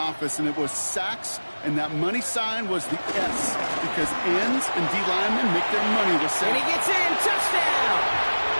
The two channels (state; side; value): inverted; both; correlation -1.00